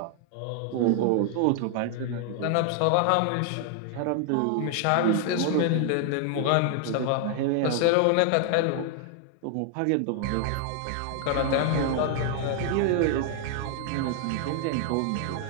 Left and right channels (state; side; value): different; both; correlation 0.00